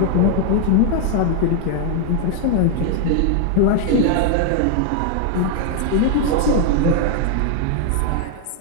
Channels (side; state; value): both; different; correlation 0.00